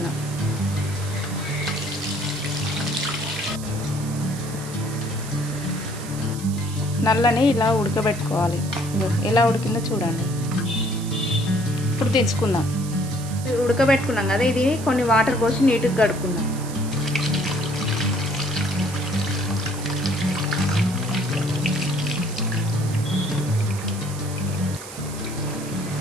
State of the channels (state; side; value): noise; right; hiss, 13 dB below the sound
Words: నల్లని ఇలా ఉడకబెట్టుకోవాలి. ఎలా ఉడికిందో చూడండి. ఇప్పుడు తెచ్చుకుందాం. ఉడకబెట్టుకున్నాం కదా, ఇది కొన్ని వాటర్ పోసి నీట్గా కడుక్కుందాం.